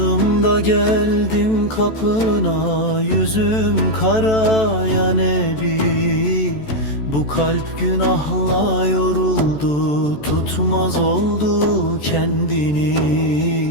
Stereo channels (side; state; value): right; late; 14 ms